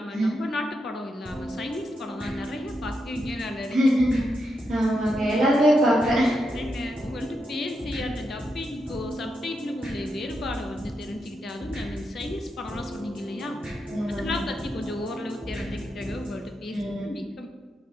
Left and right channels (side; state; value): both; normal; correlation 0.84